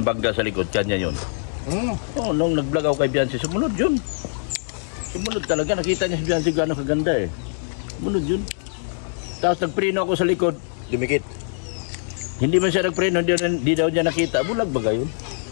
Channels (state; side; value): silent; right; digital silence